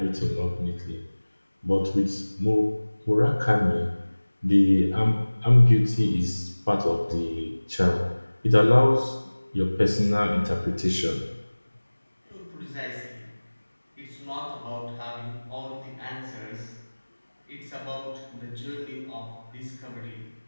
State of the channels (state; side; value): inverted; both; correlation -1.00